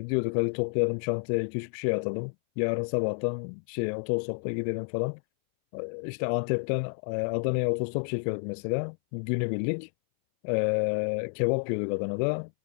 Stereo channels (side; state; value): right; silent; 58 dB below the other